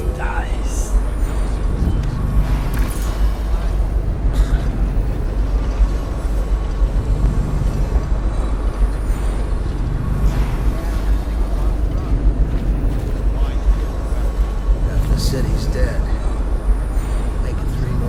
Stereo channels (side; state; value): both; identical; correlation 1.00